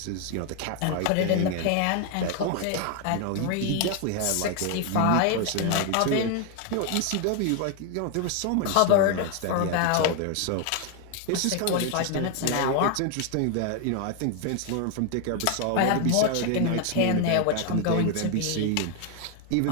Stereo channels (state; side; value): different; both; correlation 0.00